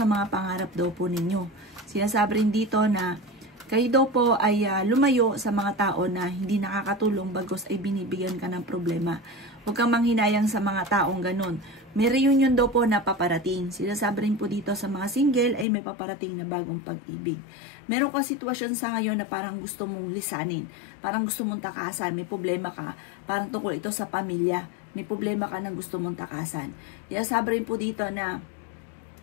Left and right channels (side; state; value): right; drops out; at 15.7 s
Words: mga pangarap daw po ninyo. Sinasabi rin dito na Kayo daw po ay lumayo sa mga tao na hindi nakakatulong bagos ay binibigyan ka ng problema. Huwag kang manghinayang sa mga taong ganun. May reunion daw po na paparating. Sinasabi rin po dito sa mga single ay may paparating na bagong pag-ibig. Meron ka sitwasyon sa ngayon na parang gusto mong lisanin. Parang gusto mong takasan. May problema ka. Parang tungkol ito sa pamilya. May problema ka na gusto mong takasan. Sinasabi rin po dito na